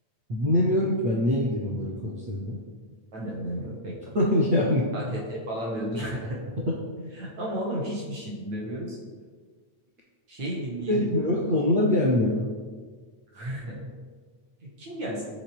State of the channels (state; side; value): late; left; 9.0 ms